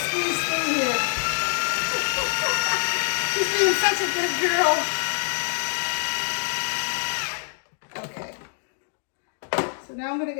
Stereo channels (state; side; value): silent; right; digital silence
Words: through here. She's being such a good girl. Okay. So now I'm gonna